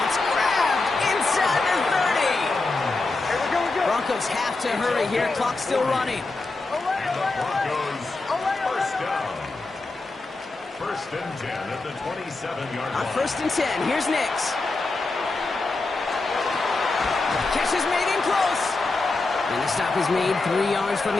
grabbed inside the 30. Broncos have to hurry here. Clock's still running. And the Broncos, 1st down. 1st and 10 at the 27-yard On line. 1st and 10, here's Nix. Catch is made in close. And the stop is made 3 yards from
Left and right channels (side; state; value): right; quieter; 3.4 dB